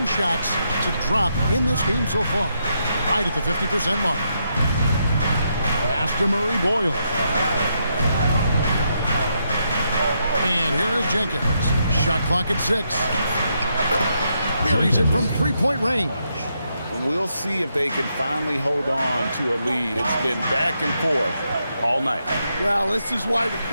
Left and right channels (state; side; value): inverted; both; correlation -0.80